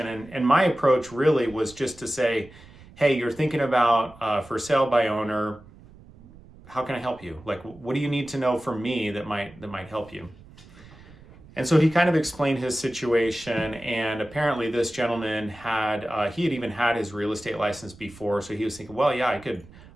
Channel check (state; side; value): noise; right; rumble, 22 dB below the sound